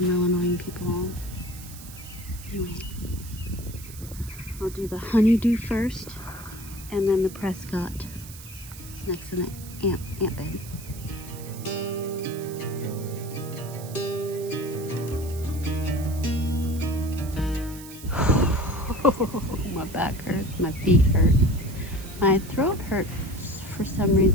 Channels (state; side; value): noise; right; hiss, 16 dB below the sound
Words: real annoying people. Anyway, I'll do the honeydew first, and then the Prescott next to the ant bed. My back hurts, my feet hurt, my throat hurts for some